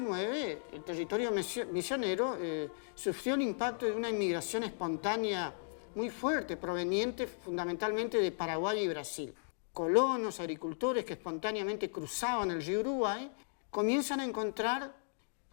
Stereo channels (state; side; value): silent; right; digital silence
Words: el territorio misionero sufrió el impacto de una inmigración espontánea muy fuerte, proveniente fundamentalmente de Paraguay y Brasil. Colonos, agricultores que espontáneamente cruzaban el río Uruguay comienzan a encontrar,